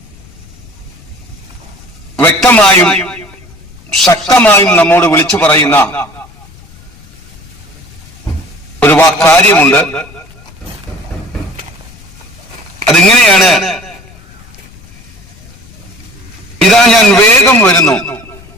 വ്യക്തമായും ശക്തമായും നമ്മോട് വിളിച്ചു പറയുന്ന ഒരു കാര്യമുണ്ട്. അതിങ്ങനെയാണ്: ഇതാ ഞാൻ വേഗം വരുന്നു,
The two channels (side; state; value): left; noise; rumble, 23 dB below the sound